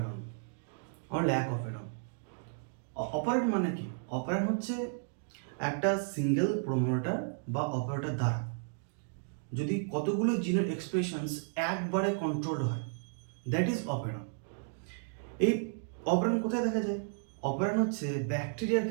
অর ল্যাক অপারেটন। অপারেটন মানে কি? অপারেটন হচ্ছে একটা সিঙ্গেল প্রোমোটার বা অপারেটর দ্বারা যদি কতগুলো জিনের এক্সপ্রেশনস একবারে কন্ট্রোল হয়, দ্যাট ইজ অপারেটন। এই অপারেটন কোথায় দেখা যায়? অপারেটন হচ্ছে ব্যাকটেরিয়ার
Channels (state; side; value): silent; left; digital silence